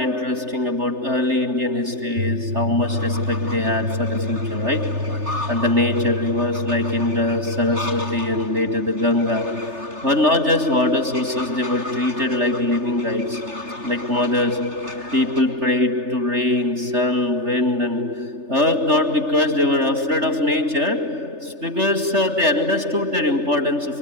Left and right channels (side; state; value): left; late; 3.3 ms